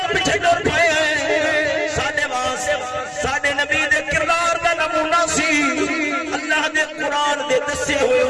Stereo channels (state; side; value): identical; both; correlation 1.00